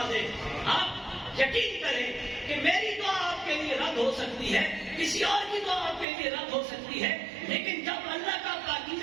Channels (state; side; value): drops out; left; at 6.1 s